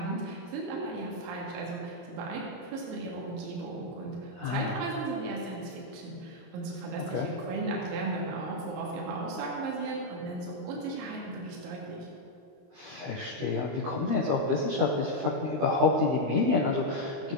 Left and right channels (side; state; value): left; late; 23 ms